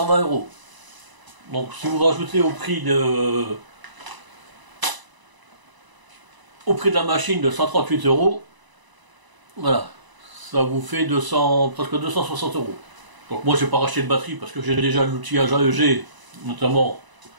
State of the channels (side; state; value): left; late; 1.0 ms